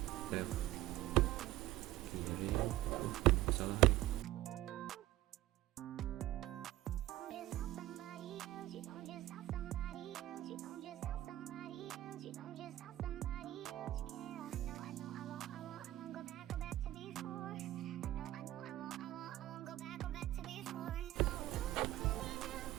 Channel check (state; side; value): quieter; left; 15.6 dB